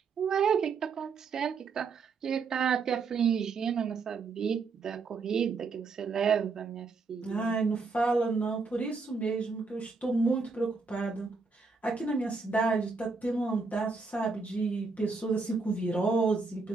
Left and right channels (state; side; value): quieter; left; 4.5 dB